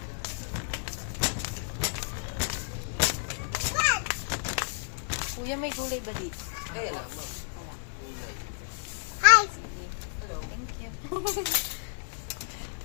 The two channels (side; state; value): right; silent; digital silence